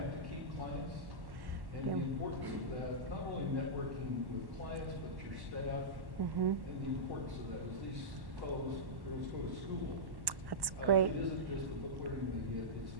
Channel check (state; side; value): late; left; 1.1 ms